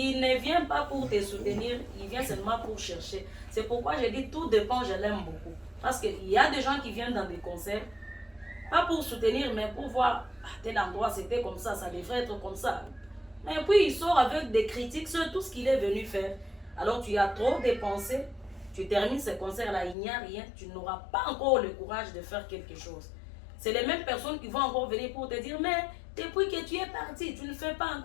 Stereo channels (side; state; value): right; drops out; at 20.0 s